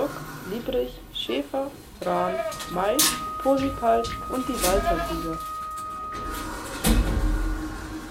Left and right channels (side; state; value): both; identical; correlation 1.00